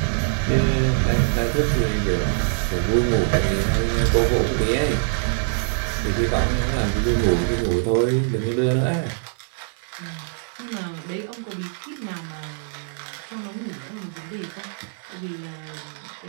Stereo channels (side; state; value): left; silent; 63 dB below the other